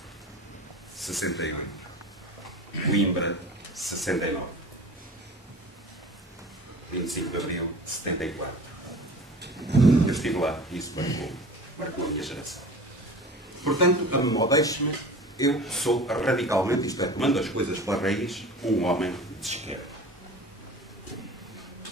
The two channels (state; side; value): normal; both; correlation 0.39